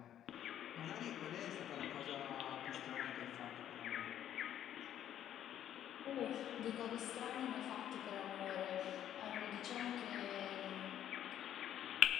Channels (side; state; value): right; quieter; 10.8 dB